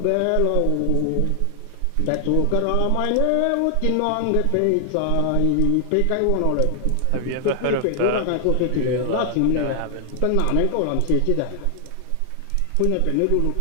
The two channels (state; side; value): different; both; correlation 0.00